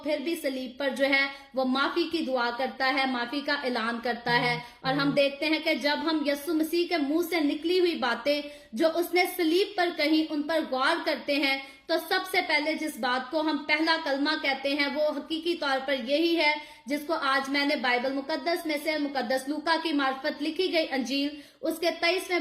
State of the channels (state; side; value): identical; both; correlation 1.00